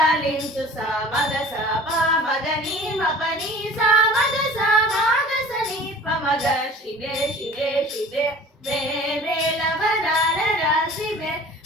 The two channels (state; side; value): normal; both; correlation 0.44